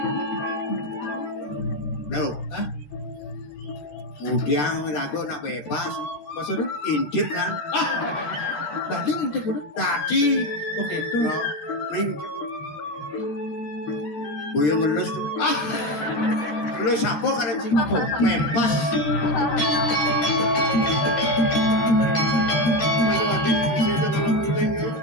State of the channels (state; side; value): late; right; 13 ms